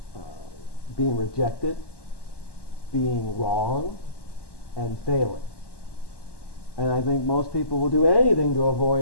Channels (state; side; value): late; right; 1.1 ms